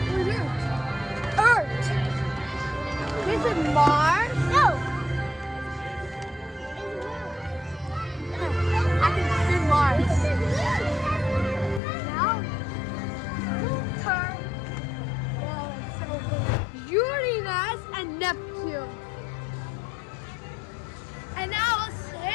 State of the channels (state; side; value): drops out; right; at 11.8 s